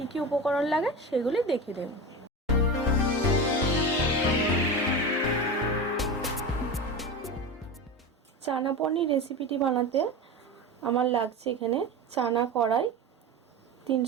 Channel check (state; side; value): normal; both; correlation 0.26